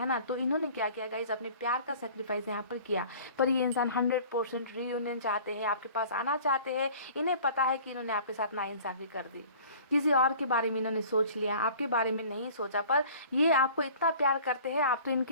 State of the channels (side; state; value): both; inverted; correlation -0.47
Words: ना। तो इन्होंने क्या किया गाइस, अपने प्यार का सेक्रीफाइस यहाँ पर किया। पर ये इंसान 100% रीयूनियन चाहते हैं, आपके पास आना चाहते हैं। इन्हें पता है कि इन्होंने आपके साथ नाइंसाफ़ी कर दी, किसी और के बारे में इन्होंने सोच लिया, आपके बारे में नहीं सोचा। पर ये आपको इतना प्यार करते हैं, आप तो